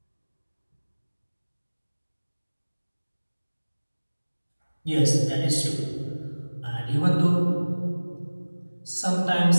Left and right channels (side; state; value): both; inverted; correlation -1.00